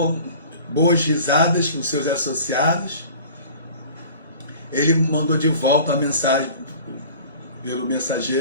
boas risadas com seus associados, ele mandou de volta a mensagem pelo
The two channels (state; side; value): inverted; both; correlation -0.44